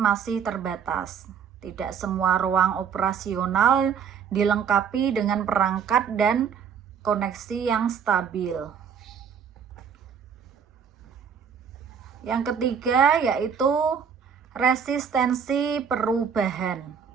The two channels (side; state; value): left; quieter; 7.2 dB